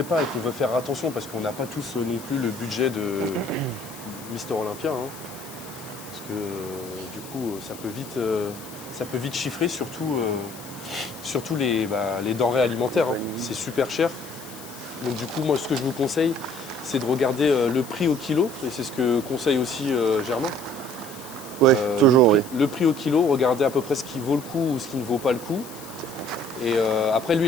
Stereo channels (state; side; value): noise; left; hiss, 16 dB below the sound